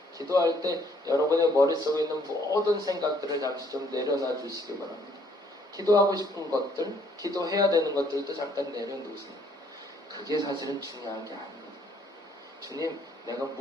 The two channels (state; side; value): normal; both; correlation 0.65